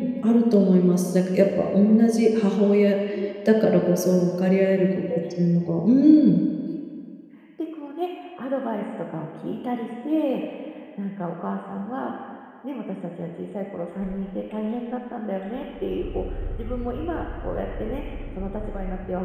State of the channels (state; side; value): identical; both; correlation 1.00